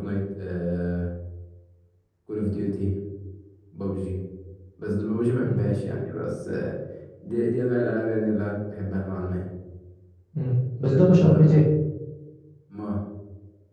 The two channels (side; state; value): both; identical; correlation 1.00